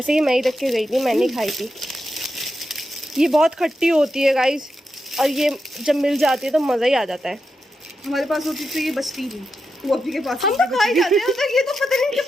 ये मैं ही रख के गई थी, मैंने खाई थी। ये बहुत खट्टी होती है गाइस, और ये जब मिल जाती है तो मज़ा ही आ जाता है। हमारे पास होती तो ये बचती नहीं, वो अभी के पास हम तो खा ही जाते हैं, तो ये तो पता नहीं इनके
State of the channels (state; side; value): normal; both; correlation 0.87